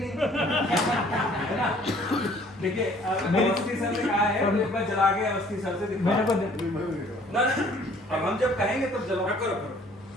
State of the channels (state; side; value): normal; both; correlation 0.57